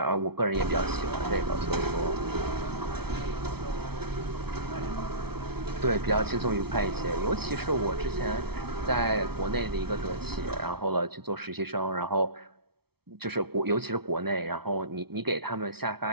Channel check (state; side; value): late; left; 0.96 ms